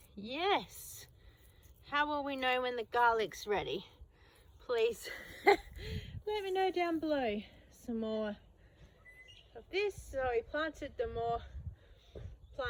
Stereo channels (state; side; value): identical; both; correlation 1.00